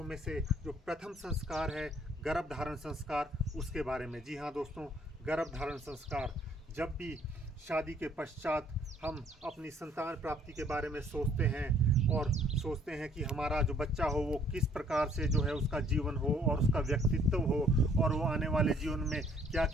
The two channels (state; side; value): normal; both; correlation 0.61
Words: में से जो प्रथम संस्कार है गर्भधारण संस्कार, उसके बारे में। जी हाँ दोस्तों, गर्भधारण संस्कार। जब भी शादी के पश्चात हम अपनी संतान प्राप्ति के बारे में सोचते हैं और सोचते हैं कि हमारा जो बच्चा हो वो किस प्रकार से जो है उसका जीवन हो और उसका व्यक्तित्व हो और वो आने वाले जीवन में क्या